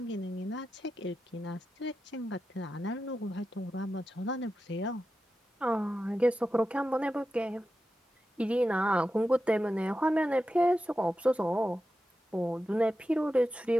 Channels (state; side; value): normal; both; correlation 0.91